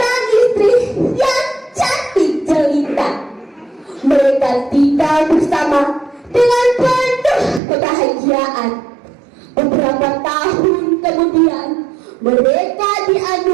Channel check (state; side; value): drops out; left; at 7.6 s